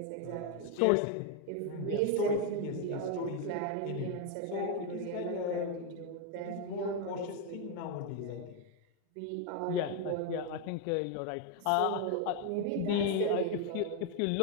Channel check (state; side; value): different; both; correlation 0.01